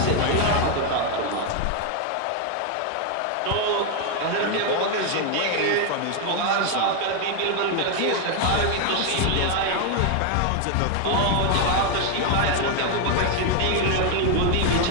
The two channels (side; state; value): both; different; correlation 0.01